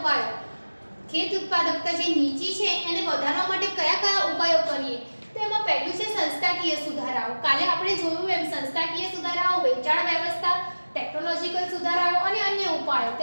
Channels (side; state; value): both; inverted; correlation -1.00